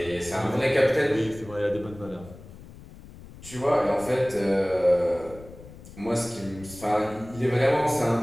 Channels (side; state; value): left; noise; rumble, 18 dB below the sound